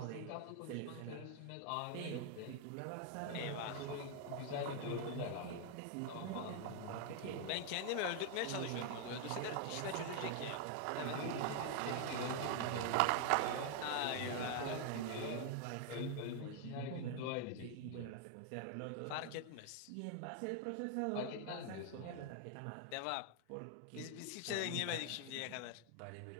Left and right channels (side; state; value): both; different; correlation 0.00